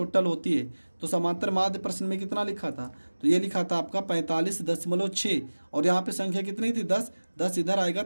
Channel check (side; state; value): both; inverted; correlation -1.00